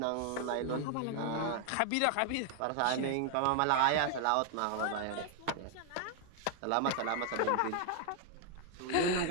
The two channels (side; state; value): both; different; correlation 0.00